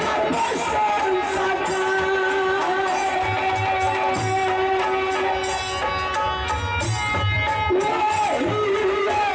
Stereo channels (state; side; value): identical; both; correlation 1.00